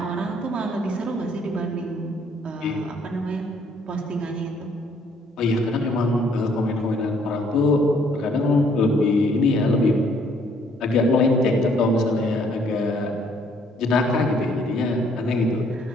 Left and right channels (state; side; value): normal; both; correlation 0.64